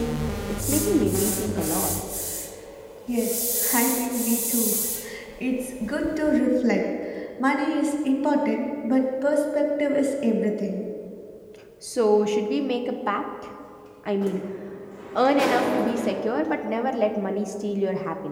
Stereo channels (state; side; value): identical; both; correlation 1.00